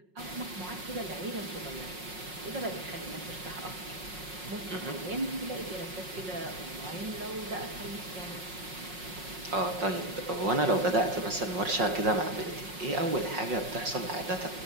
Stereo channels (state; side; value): late; left; 5.5 ms